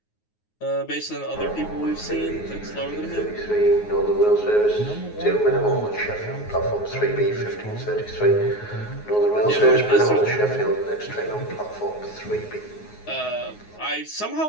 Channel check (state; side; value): late; right; 9.5 ms